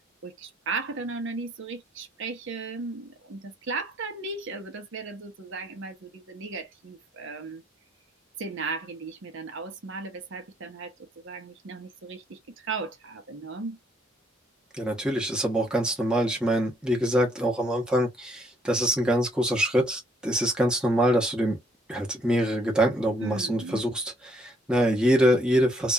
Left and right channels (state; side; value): normal; both; correlation 0.68